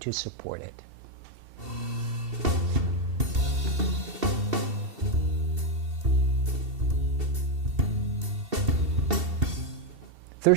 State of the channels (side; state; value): left; late; 2.7 ms